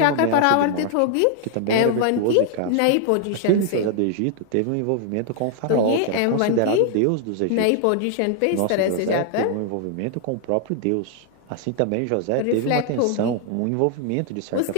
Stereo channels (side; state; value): both; different; correlation 0.00